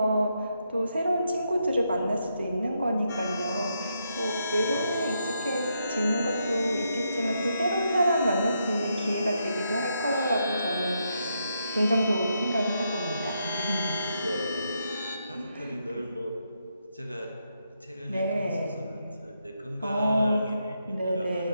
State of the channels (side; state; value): both; inverted; correlation -0.80